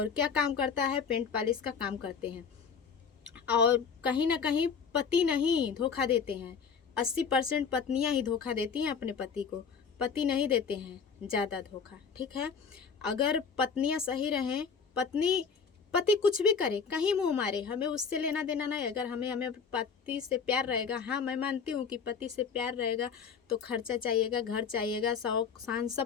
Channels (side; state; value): right; quieter; 6.0 dB